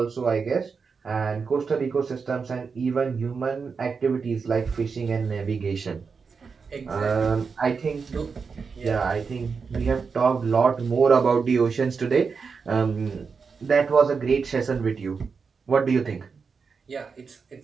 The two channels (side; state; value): left; quieter; 5.3 dB